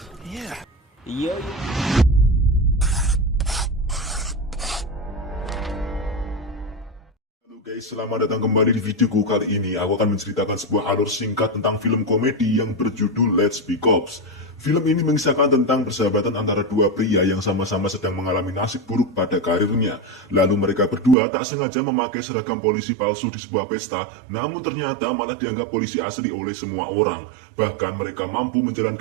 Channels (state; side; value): drops out; left; at 21.2 s